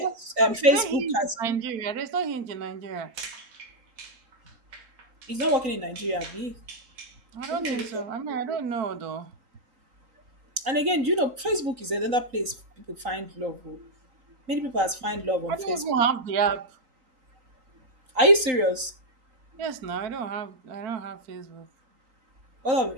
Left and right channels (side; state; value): left; late; 3.9 ms